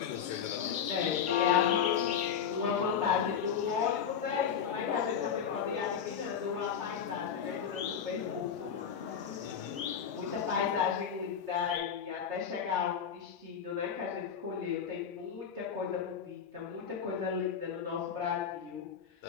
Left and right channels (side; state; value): right; quieter; 7.7 dB